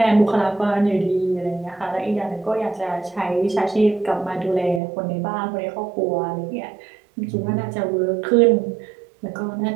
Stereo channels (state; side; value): drops out; left; at 4.8 s